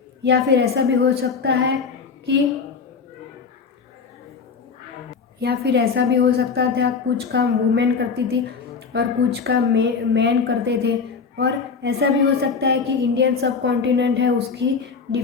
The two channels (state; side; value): quieter; right; 5.4 dB